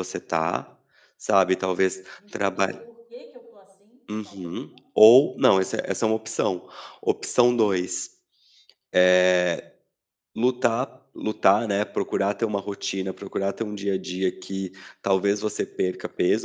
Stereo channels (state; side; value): identical; both; correlation 1.00